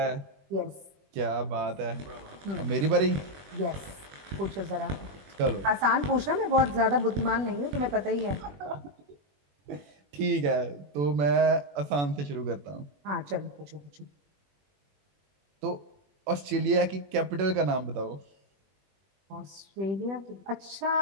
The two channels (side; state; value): left; late; 21 ms